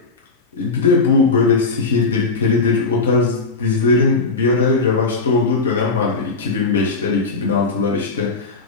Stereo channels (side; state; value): right; quieter; 4.0 dB